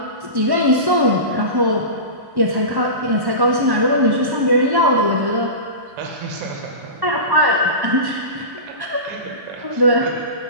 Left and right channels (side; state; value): left; late; 1.1 ms